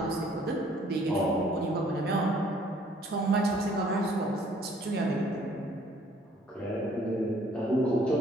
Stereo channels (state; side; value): normal; both; correlation 0.60